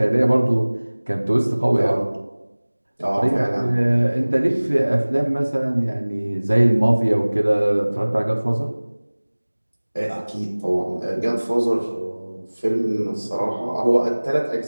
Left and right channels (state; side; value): inverted; both; correlation -1.00